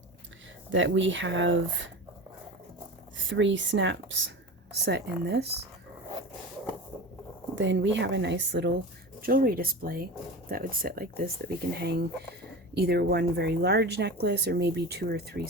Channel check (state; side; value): normal; both; correlation 0.30